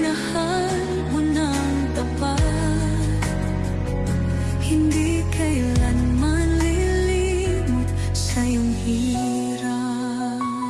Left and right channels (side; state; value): both; identical; correlation 1.00